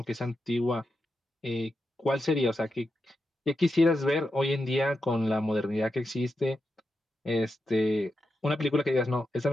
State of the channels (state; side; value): normal; both; correlation 0.87